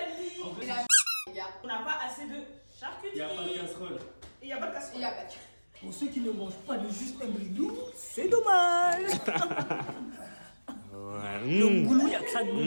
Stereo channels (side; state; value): both; inverted; correlation -1.00